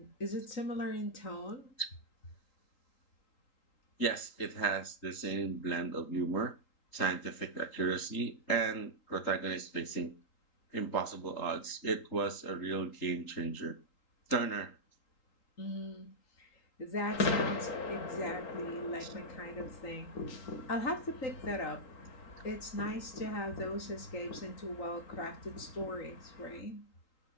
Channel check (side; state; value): right; late; 3.8 ms